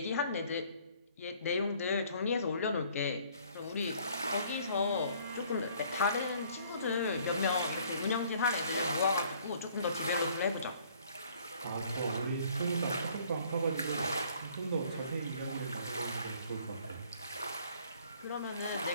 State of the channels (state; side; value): inverted; both; correlation -0.59